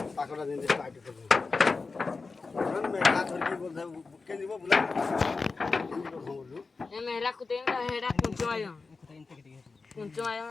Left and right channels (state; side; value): quieter; right; 4.2 dB